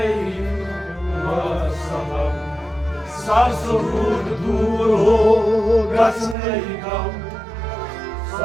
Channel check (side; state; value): left; drops out; at 6.4 s